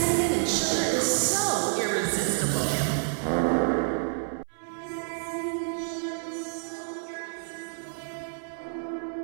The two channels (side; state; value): left; silent; 59 dB below the other